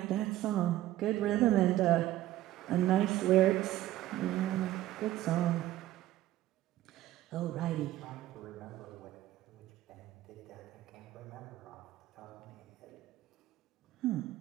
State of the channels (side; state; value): left; quieter; 14.6 dB